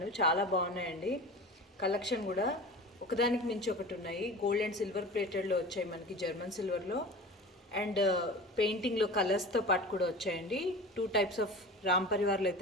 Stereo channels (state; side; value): normal; both; correlation 0.35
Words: చాలా బాగున్నాయండి. కలెక్షన్ కూడా ఒకదానికి మించి ఒకటి ఉన్నాయి. గోల్డ్ అండ్ సిల్వర్ ప్లేటెడ్లో వచ్చాయి మనకి, జర్మన్ సిల్వర్లో అండ్ పెయింటింగ్లో కలర్స్తో పాటు కూడా వచ్చాయండి. 2 టైప్స్ ఆఫ్ రామ్ పరివార్లు